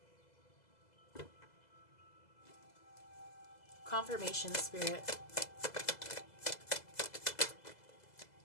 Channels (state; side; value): late; right; 2.0 ms